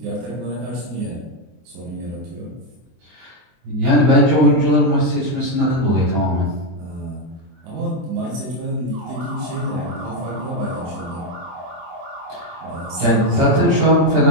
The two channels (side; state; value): left; late; 24 ms